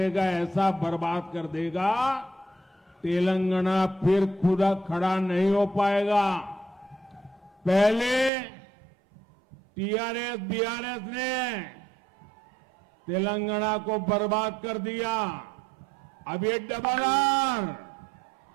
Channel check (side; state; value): left; drops out; at 8.3 s